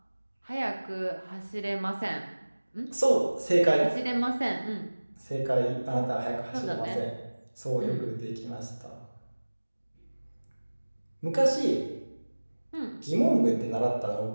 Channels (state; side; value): inverted; both; correlation -1.00